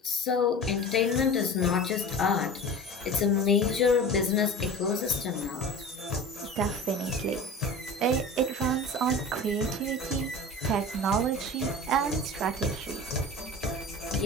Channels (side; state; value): both; normal; correlation 0.35